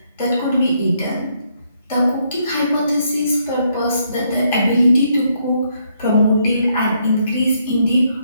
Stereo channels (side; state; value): both; inverted; correlation -0.74